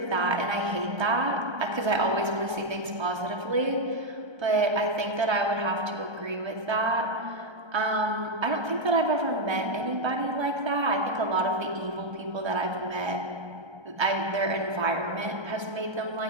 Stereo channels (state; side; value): late; left; 1.3 ms